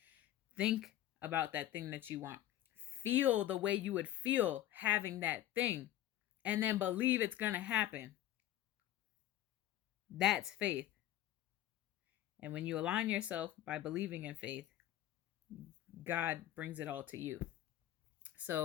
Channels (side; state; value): right; quieter; 13.2 dB